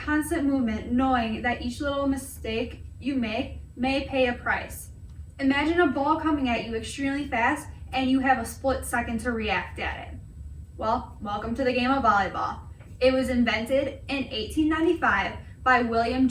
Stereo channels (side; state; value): both; identical; correlation 1.00